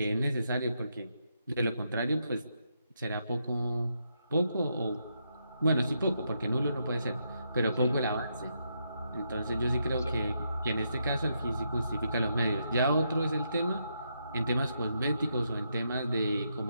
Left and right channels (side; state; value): both; inverted; correlation -0.80